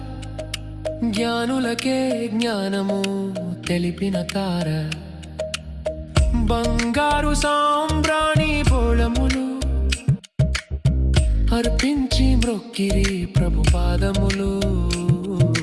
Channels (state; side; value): identical; both; correlation 1.00